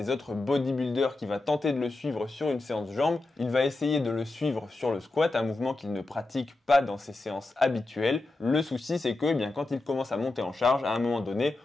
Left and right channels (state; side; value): quieter; right; 3.1 dB